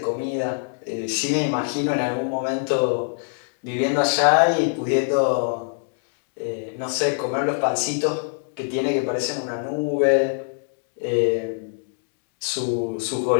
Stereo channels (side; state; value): right; silent; digital silence